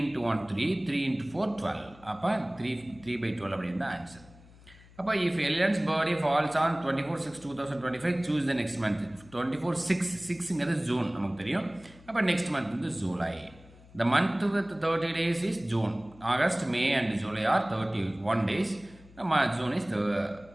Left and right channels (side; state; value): left; noise; hum, 23 dB below the sound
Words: into 1 3, 3 into 4 12. அப்போ 3/12 அப்படின்னு தான் ஆன்சர். அப்போ if Ellen's birthday falls on 24/6/2025 choose the next month. 24/6 June நமக்கு தெரியும். அப்போ நெக்ஸ்ட் மந்த் வந்து July. The month with 30 days is June. August, May and July are 31 days. June is